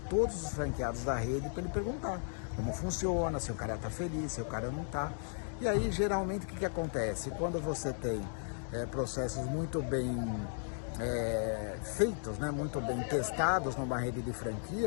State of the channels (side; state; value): right; silent; digital silence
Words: os franqueados da rede para ele perguntar como funciona, se o cara está feliz, se o cara não está. E aí, geralmente, o que acontece? Quando você tem processos muito bem feitos, né, muito bem testados numa rede de